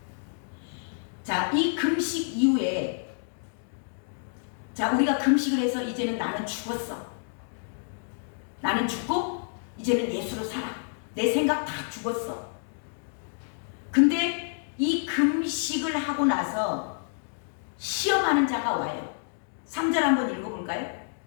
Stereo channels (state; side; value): silent; right; digital silence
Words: 자, 이 금식 이후에 자, 우리가 금식을 해서 이제는 나는 죽었어. 나는 죽고 이제는 예수로 살아. 내 생각 다 죽었어. 근데 이 금식을 하고 나서 시험하는 자가 와요. 3절 한번 읽어볼까요?